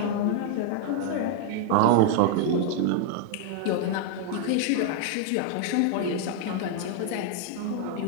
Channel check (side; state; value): both; different; correlation 0.00